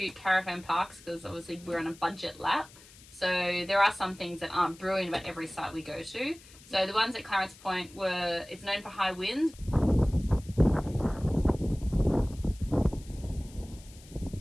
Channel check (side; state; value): left; noise; hiss, 22 dB below the sound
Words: caravan parks because obviously we're on a budget lap. So there are some things that aren't brilliant about every site we go to. So the ones at Clarence Point it's known for high winds.